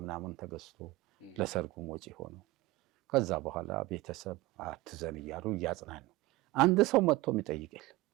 ምናምን ተገዝቶ ለሰርጉም ወጪ ሆኖ ከዛ በኋላ ቤተሰብ አትዘን እያሉ እያጽናኑ አንድ ሰው መጥቶ የሚጠይቅ የለም።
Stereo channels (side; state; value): left; quieter; 19.8 dB